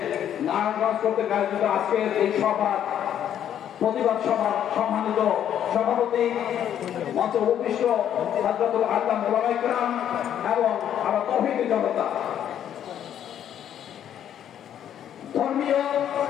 নারায়ণগঞ্জ কর্তৃক আয়োজিত আজকের এই সভা প্রতিবাদ সভার সম্মানিত সভাপতি মঞ্চে উপবিষ্ট হযরতুল আল্লামা ওলামায়ে কেরাম এবং আমার তৌহিদি জনতা, ধর্মীয়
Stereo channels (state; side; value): quieter; right; 10.0 dB